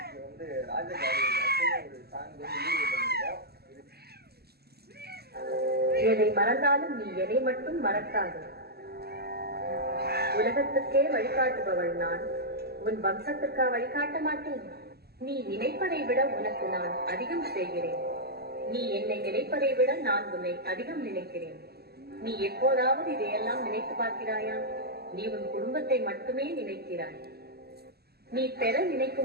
வந்து ராஜபாடி ஒரு சாங் வந்து வீடியோ பண்ணிருக்கோம். எதை மறந்தாலும் நீ எதை மட்டும் மறக்காது. உலகத்துக்கே வழிகாட்டுபவள் நான், உன் வம்சத்துக்கா வழிகாட்ட மாட்டேன். நீ நினைப்பதை விட உனக்கு நான் அதிகம் செய்கிறேன். நீ என்னை நினைப்பதை விட நான் உன்னை அதிகம் நினைக்கிறேன். நீ எப்போதாவது இதையெல்லாம் நினைத்து பார்க்கிறாயா? நீ உன் குடும்பத்தை மட்டுமே நினைக்கிறாய். நீ பெற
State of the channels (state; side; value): late; left; 0.46 ms